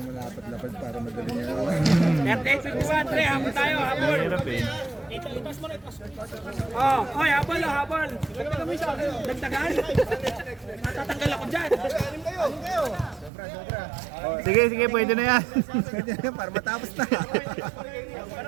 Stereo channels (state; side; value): drops out; left; at 13.3 s